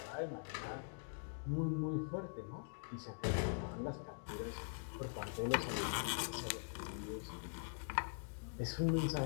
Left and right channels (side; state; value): right; silent; digital silence